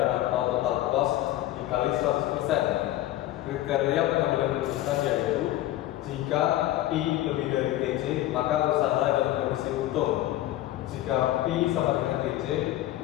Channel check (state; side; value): quieter; right; 14.8 dB